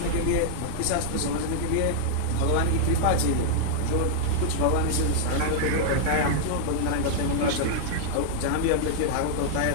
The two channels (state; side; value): different; both; correlation -0.01